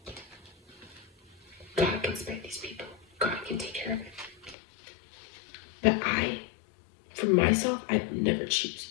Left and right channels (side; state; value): right; drops out; at 4.5 s